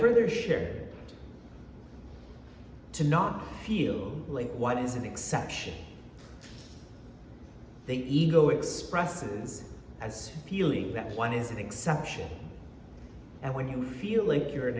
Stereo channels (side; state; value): both; identical; correlation 1.00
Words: shared to not feel like one is an exception. The ego expresses as feeling that one is an exception. And when you feel like you're an